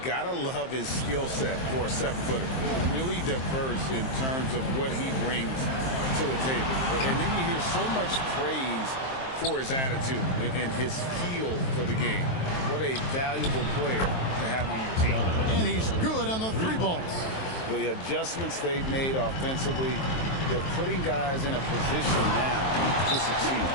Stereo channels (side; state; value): right; late; 23 ms